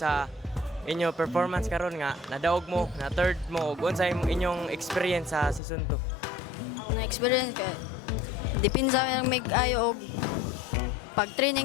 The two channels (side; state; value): right; drops out; at 5.6 s